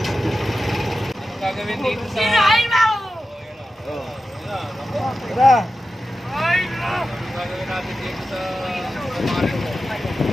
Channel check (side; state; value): both; normal; correlation 0.92